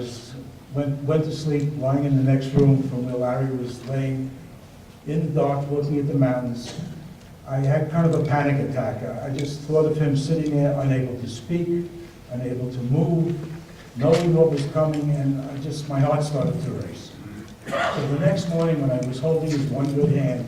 went to sleep, lying in the next room from where Larry was laying in the dark, looking at the mountains, I had kind of a panic attack. I just thought of him sitting there, unable to speak, unable to move, knowing what was coming, and my heart started to race. So the next morning, when I was holding his one good hand,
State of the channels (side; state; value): both; identical; correlation 1.00